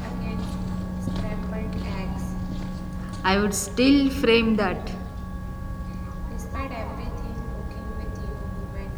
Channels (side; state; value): both; identical; correlation 1.00